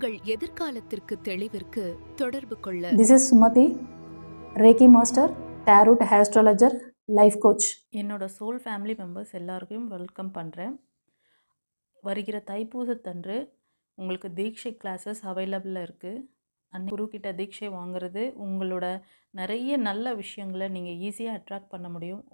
எதிர்காலத்திற்கு தெளிவிற்கு தொடர்பு கொள்ள. This is Sumati, Reiki Master, Tarot Astrologer, Life Coach. என்னோட சோல் ஃபேமிலி மெம்பர்ஸ் எல்லாருக்கும் வெல்கம் பண்ணுறேன். வருகிற தைப்பூசத்தன்று உங்களுக்கு தீட்சை கிளாஸஸ் அவைலபிளாக இருக்குது. குருக்கிட்ட தீட்சை வாங்குறது உங்களோட நிறைய நல்ல விஷயங்களை நீங்கள் ஈஸியாக அட்ராக்ட் பண்ண முடியும்.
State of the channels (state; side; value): inverted; both; correlation -1.00